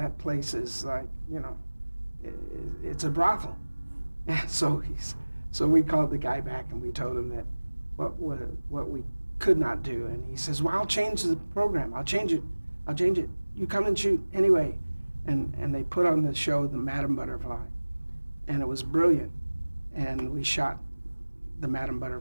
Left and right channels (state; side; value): inverted; both; correlation -1.00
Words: place is like, it's a brothel. So we called the guy back, and we told him that what we could not do. And he says, well, I'll change the program. I'll change it. You come and shoot anyway. And they put on the show, the Madam Butterfly, and it was brilliant. And we shot the Madam